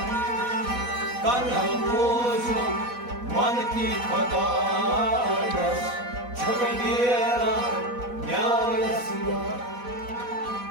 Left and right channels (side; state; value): left; late; 4.1 ms